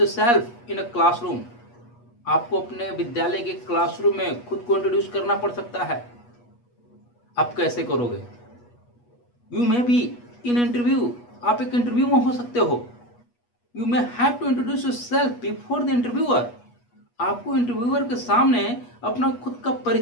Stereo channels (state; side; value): late; right; 8.3 ms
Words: in a classroom. आपको अपने विद्यालय के क्लासरूम में खुद को इंट्रोड्यूस करना पड़ सकता है. आप कैसे करोगे? You may be in interview. आप एक इंटरव्यू में हो सकते हो. You may have to introduce yourself before the interviewer. आपको इंटरव्यूअर के सामने अपना खुद का